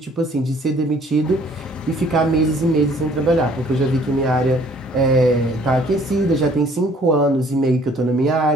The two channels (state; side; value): normal; both; correlation 0.58